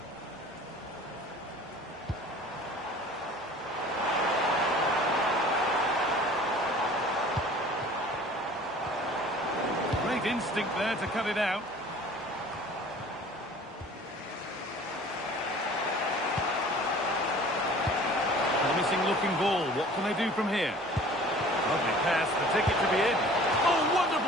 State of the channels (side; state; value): both; normal; correlation 0.47